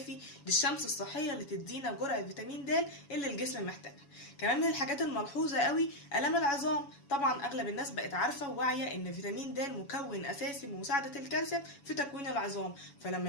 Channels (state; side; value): late; right; 7.1 ms